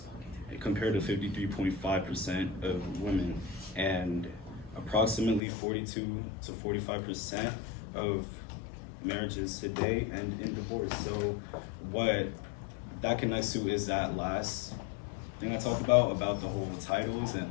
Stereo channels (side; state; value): right; drops out; at 5.4 s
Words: compared to 53.5% of women, and approximately 42 to 45% of marriages today end in divorce. So what that connects to is that last thing I talked about the whole titles